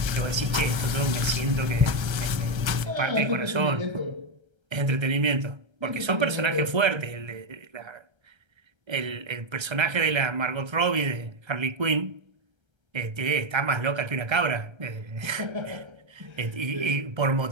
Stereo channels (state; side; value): late; left; 1.3 ms